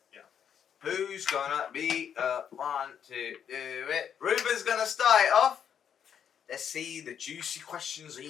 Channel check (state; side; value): quieter; right; 8.3 dB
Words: Yeah. who's gonna be one to do it? Ruben's gonna start it off. Let's see the juicy questions